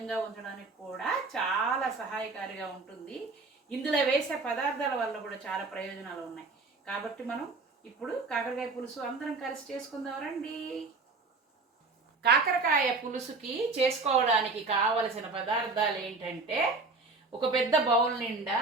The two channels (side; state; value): left; quieter; 3.8 dB